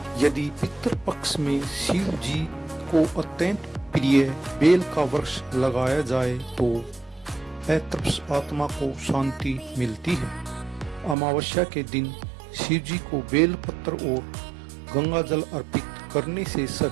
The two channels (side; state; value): left; drops out; at 11.2 s